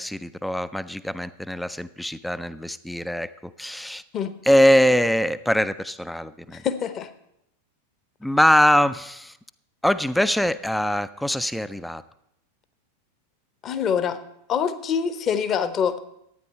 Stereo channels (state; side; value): normal; both; correlation 0.90